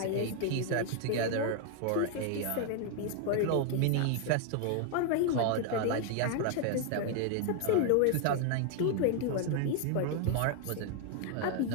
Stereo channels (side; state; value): both; different; correlation 0.00